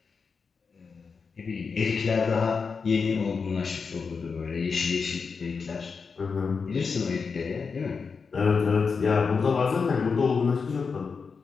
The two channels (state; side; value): quieter; right; 5.2 dB